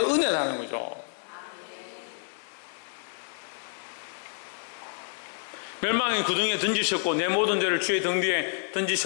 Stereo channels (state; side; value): silent; right; digital silence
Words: 거죠. 멸망의 구덩이에 던지셨고 내 모든 죄를 주의 등 뒤에